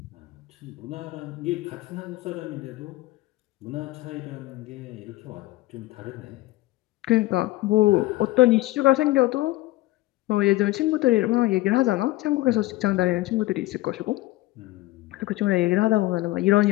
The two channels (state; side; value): quieter; right; 18.3 dB